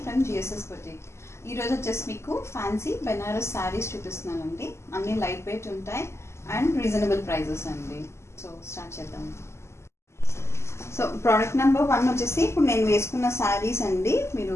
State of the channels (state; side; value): late; right; 0.13 ms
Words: from GSS boutique. ఈరోజు వచ్చేసి మీకు ఫ్యాన్సీ బెనారస్ శారీస్ చూపిస్తున్నానండి. అన్నీ లైట్ వెయిట్ ఉంటాయి అండ్ రీజనబుల్ ప్రైజెస్ అండి. సో స్టార్ట్ చేద్దాం. సో ప్రోడక్ట్ నెంబర్ 1 వచ్చేసి ఇప్పుడు నేను వేసుకున్న శారీస్ అండి. మీరు